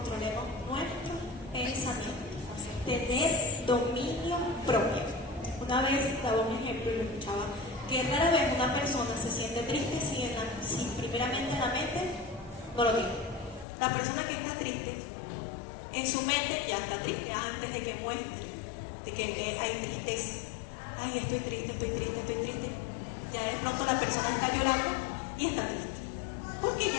nuestros pensamientos, tener dominio propio. Una vez daba un ejemplo y lo escuchaba, que rara vez una persona se siente triste si primeramente en la mente no lo tiene. La persona que está triste, en su mente ya está triste antes de que muestre, de que hay tristeza. Ay, estoy triste. Ya de pronto la persona está llorando y está triste. Porque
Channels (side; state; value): right; drops out; at 13.7 s